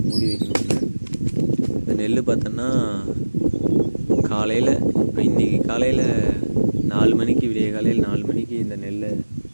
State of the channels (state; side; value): inverted; both; correlation -1.00